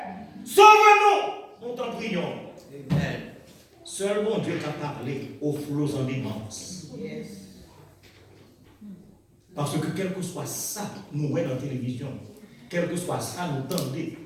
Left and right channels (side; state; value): both; identical; correlation 1.00